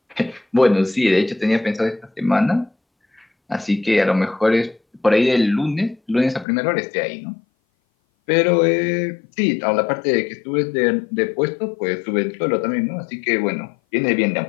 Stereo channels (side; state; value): right; drops out; at 6.5 s